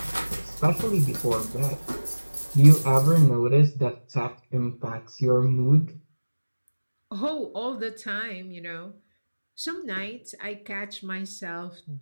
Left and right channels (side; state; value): both; inverted; correlation -1.00